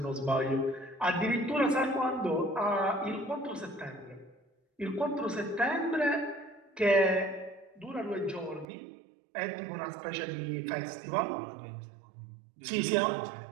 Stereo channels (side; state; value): left; drops out; at 8.7 s